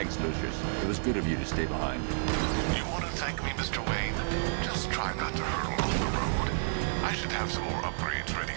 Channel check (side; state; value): left; silent; digital silence